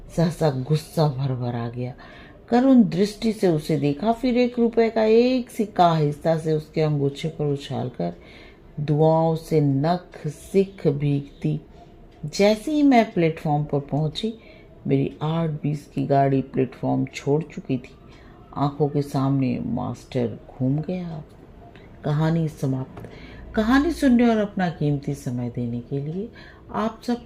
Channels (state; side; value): identical; both; correlation 1.00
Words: सहसा गुस्सा भर भर आ गया। करुण दृष्टि से उसे देखा, फिर 1 रुपए का एक सिक्का आहिस्ता से उसके अंगूछे पर उछालकर दुआओं से नख सिख भीगती। जैसे ही मैं प्लेटफॉर्म पर पहुंची, मेरी 8:20 की गाड़ी प्लेटफॉर्म छोड़ चुकी थी। आंखों के सामने मास्टर घूम गया। कहानी समाप्त। कहानी सुनने और अपना कीमती समय देने के लिए आप